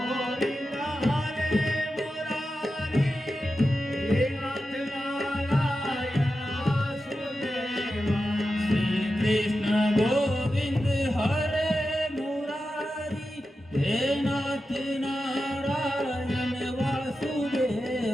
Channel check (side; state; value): both; normal; correlation 0.91